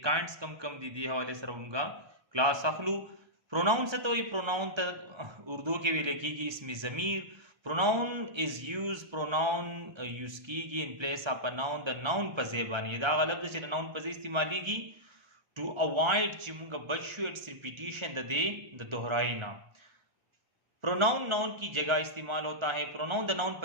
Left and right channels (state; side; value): late; left; 1.3 ms